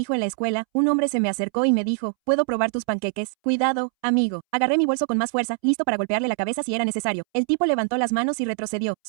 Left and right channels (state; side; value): silent; left; 63 dB below the other